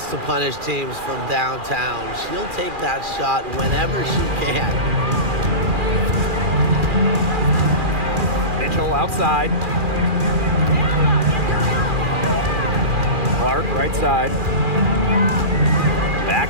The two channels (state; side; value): late; left; 2.4 ms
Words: to punish teams from downtown. She'll take that shot whenever she can. Mitchell outside. Clark right side.